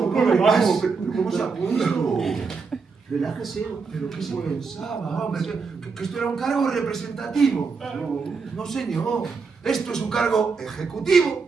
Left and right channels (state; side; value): quieter; left; 4.9 dB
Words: ¿Cómo se apunta? Relájese. ¿Pero qué se pensaba, hombre? ¿Que esto era un cargo representativo? No, señor. Esto es un cargo ejecutivo.